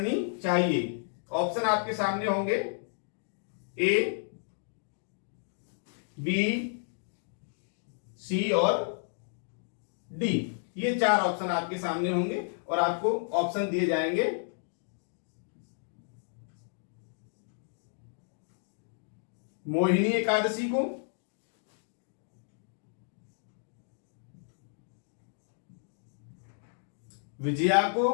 चाहिए। ऑप्शन आपके सामने होंगे ए, बी, सी और डी। ये 4 ऑप्शन आपके सामने होंगे और आपको ऑप्शन दिए जाएंगे मोहिनी एकादशी को, विजया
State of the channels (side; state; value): right; silent; digital silence